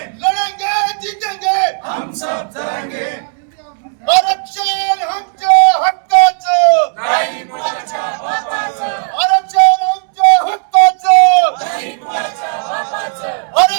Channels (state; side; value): silent; left; digital silence